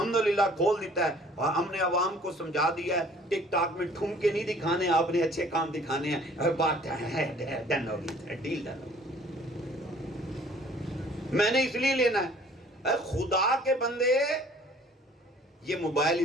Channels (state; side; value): normal; both; correlation 0.54